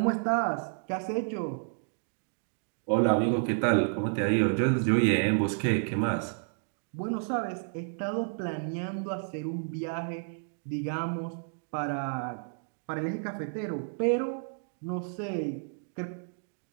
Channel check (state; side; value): silent; left; digital silence